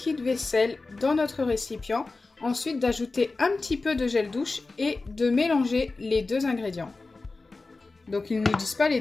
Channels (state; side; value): quieter; right; 3.6 dB